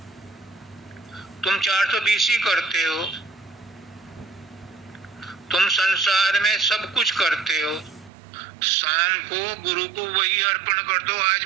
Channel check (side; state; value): left; drops out; at 8.1 s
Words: तुम 420 ही करते हो, तुम संसार में सब कुछ करते हो, शाम को गुरु को वही अर्पण कर दो, आज